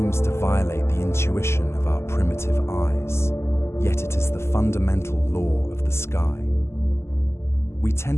to violate the intuition of our primitive eyes, yet it is the fundamental law of the sky. We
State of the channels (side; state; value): right; late; 0.13 ms